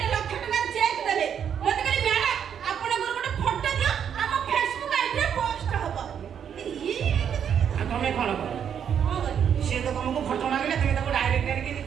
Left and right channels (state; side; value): quieter; left; 8.3 dB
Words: ଲକ୍ଷ ଟଙ୍କାର ଚେକ୍ ଦେଲେ ମତେ କହିଲେ ମ୍ୟାଡାମ ଆପଣଙ୍କର ଗୋଟେ ଫଟୋ ଦିଅ ଆମ ଫେସବୁକ୍ ଆଇଡିରେ ପୋଷ୍ଟ ହବ ତମେ କଣ କର ସିଏ ତ ତମକୁ ଫଟୋ ମାଗିଲେ ତମେ ତାକୁ ଡାଇରେକ୍ଟ ଆଣିକି